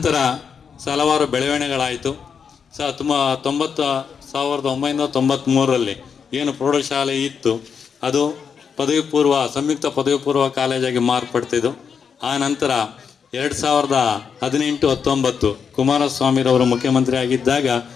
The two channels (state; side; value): quieter; right; 6.6 dB